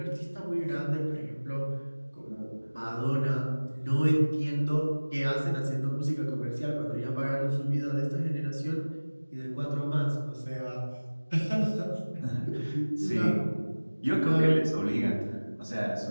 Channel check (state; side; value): inverted; both; correlation -1.00